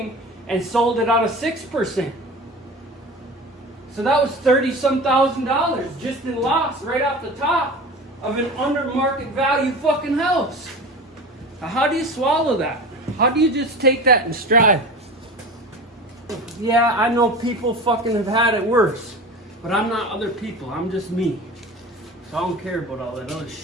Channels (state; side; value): normal; both; correlation 0.33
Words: and sold it on a 6%. So that was $30-some thousand just in loss right off the top of an under market value fucking house. Now, how do you swallow that? How do you just take that in stride? Yeah, I know people fucking have had it worse, but I'm not other people. I'm just me. So I don't care about all that other